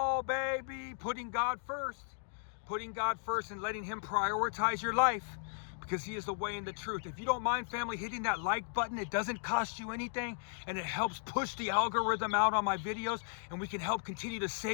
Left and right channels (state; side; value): silent; right; digital silence